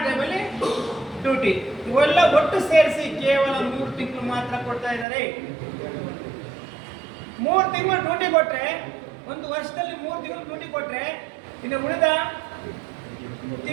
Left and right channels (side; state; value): left; drops out; at 5.1 s